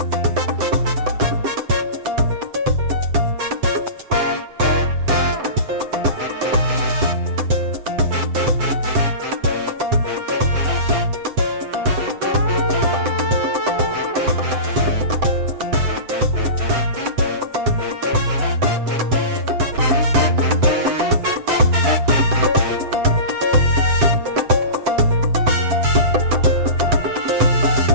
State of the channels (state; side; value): late; left; 7.8 ms